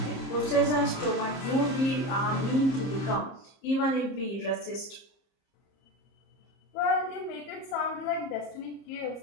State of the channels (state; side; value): late; right; 30 ms